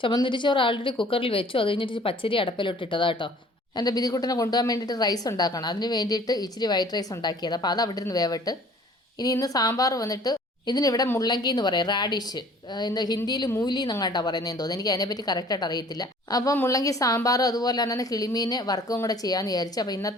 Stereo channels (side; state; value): both; normal; correlation 0.52